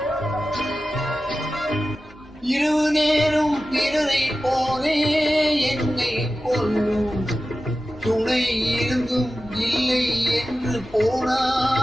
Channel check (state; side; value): normal; both; correlation 0.94